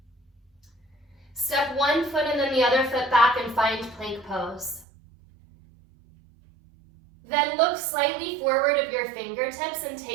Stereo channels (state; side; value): drops out; left; at 4.9 s